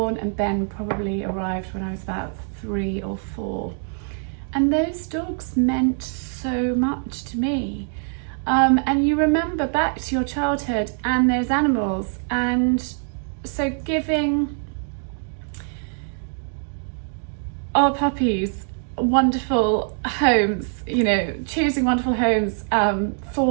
and Ben probably arrived when I was about 3 or 4. And those dogs meant so much to me. And you remember back to your childhood and those animals, and so giving our puppies wonderful homes, you know, choosing wonderful homes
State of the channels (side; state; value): left; silent; 63 dB below the other